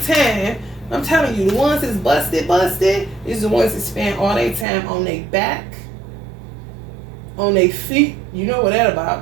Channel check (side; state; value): left; drops out; at 4.7 s